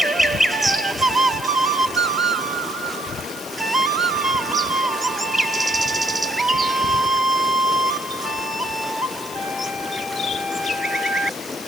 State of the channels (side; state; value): left; noise; hiss, 16 dB below the sound